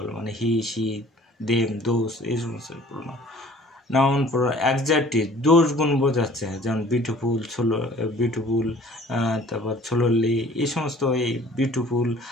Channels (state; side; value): normal; both; correlation 0.51